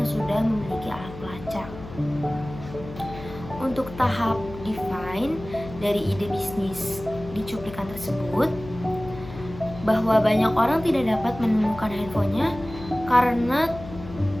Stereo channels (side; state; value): left; noise; hum, 13 dB below the sound